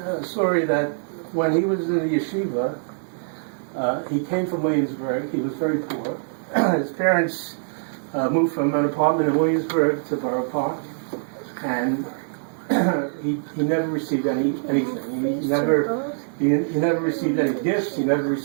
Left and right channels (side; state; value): left; silent; digital silence